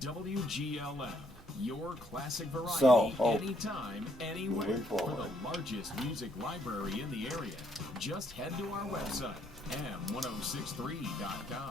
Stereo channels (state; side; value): normal; both; correlation 0.70